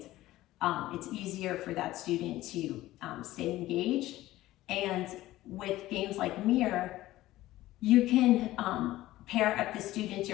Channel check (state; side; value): quieter; right; 16.1 dB